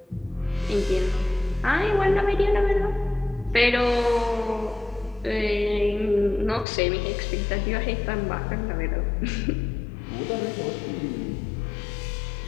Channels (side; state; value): right; drops out; at 6.7 s